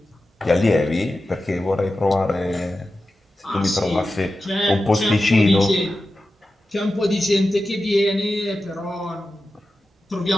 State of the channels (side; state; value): both; normal; correlation 0.93